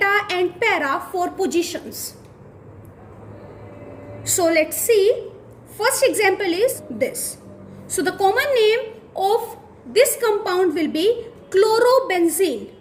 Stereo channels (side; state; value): both; identical; correlation 1.00